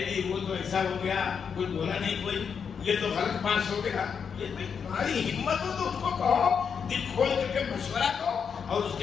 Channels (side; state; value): right; quieter; 6.6 dB